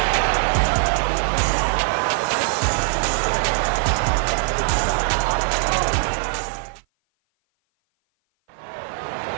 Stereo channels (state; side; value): silent; left; 56 dB below the other